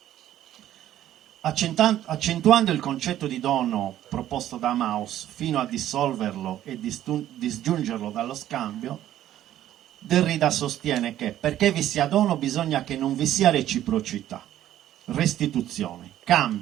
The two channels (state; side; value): quieter; left; 12.4 dB